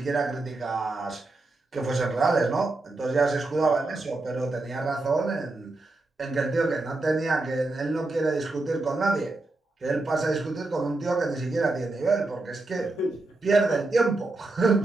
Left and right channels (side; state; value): left; quieter; 3.1 dB